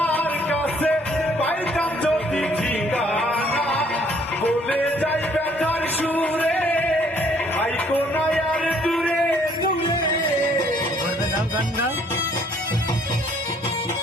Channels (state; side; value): normal; both; correlation 0.62